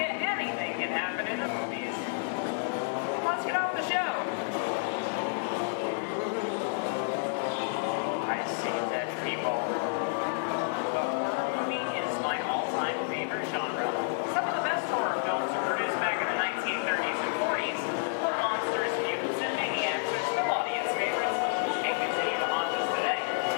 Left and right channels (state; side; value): silent; right; digital silence